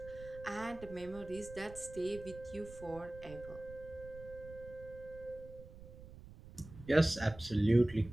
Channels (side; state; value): right; noise; rumble, 16 dB below the sound